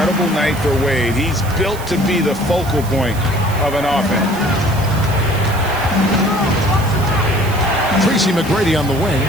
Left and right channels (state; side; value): noise; right; hiss, 15 dB below the sound